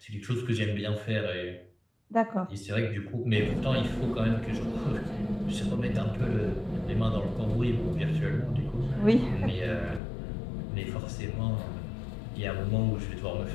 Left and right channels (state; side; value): drops out; right; at 10.0 s